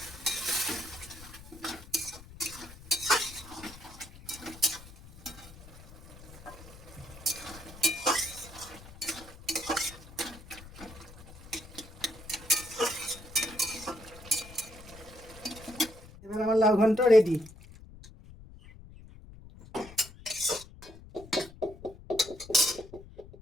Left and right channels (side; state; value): left; noise; rumble, 18 dB below the sound